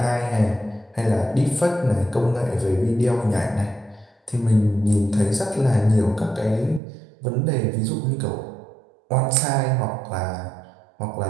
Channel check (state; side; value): drops out; left; at 6.8 s